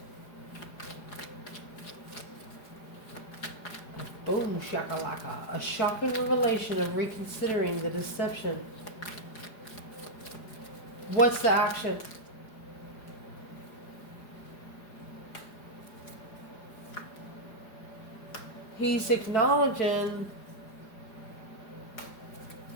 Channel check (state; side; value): late; right; 4.9 ms